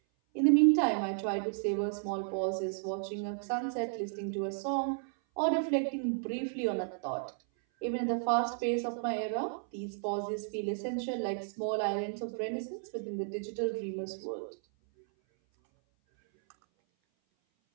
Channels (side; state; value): left; silent; 56 dB below the other